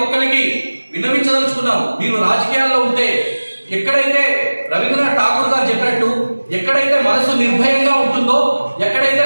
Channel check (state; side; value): inverted; both; correlation -1.00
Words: ఒక్కరికి విన్నవించదలుచుకున్నాము. మీరు రాజకీయాల్లో ఉంటే ఎక్కడైతే రవీంద్రనాథ్ ఠాగూర్ గారు చెప్పినట్టు ఎక్కడైతే మనసు నిర్భయంగా ఉంటుందో, ఎక్కడైతే